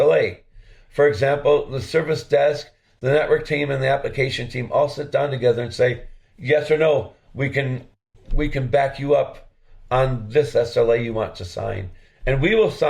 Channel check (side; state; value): both; identical; correlation 1.00